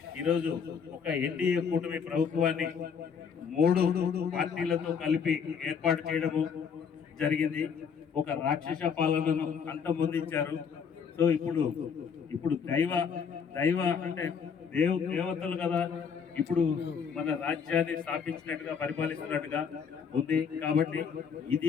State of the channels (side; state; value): right; quieter; 6.6 dB